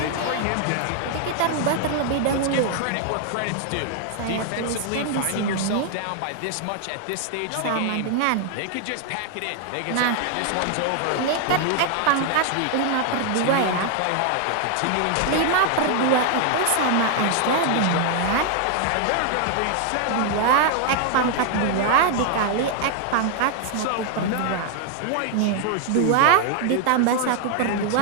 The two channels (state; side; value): different; both; correlation 0.00